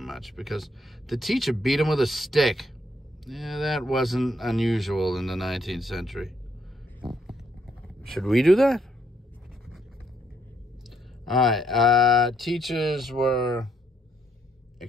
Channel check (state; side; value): normal; both; correlation 0.72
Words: because the teacher beat him with a stick. Yeah, that wasn't unusual in the 19th century. Should we do that? All right. Teachers were